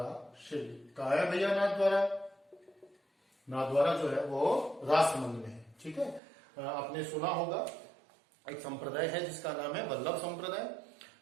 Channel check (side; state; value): left; drops out; at 6.2 s